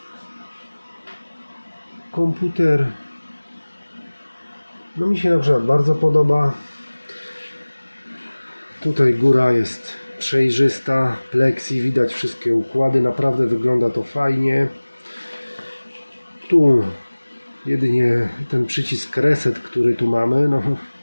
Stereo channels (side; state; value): both; inverted; correlation -1.00